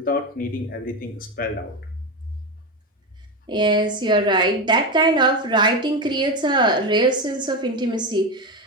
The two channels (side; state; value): both; normal; correlation 0.15